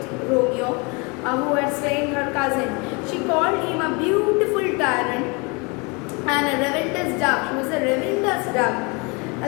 Romeo, who had slain her cousin. She called him a beautiful tyrant and a relentless dove. She was a relentless dove,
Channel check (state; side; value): quieter; right; 29.8 dB